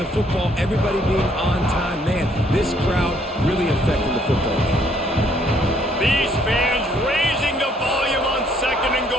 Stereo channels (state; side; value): normal; both; correlation 0.66